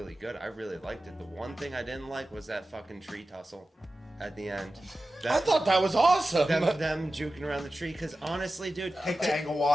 good, I really liked it. The one thing I didn't like was that fucking tree tussle at the end. I thought that was awesome. Them juking around the tree, because honestly, dude, Take the angle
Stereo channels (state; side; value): normal; both; correlation 0.94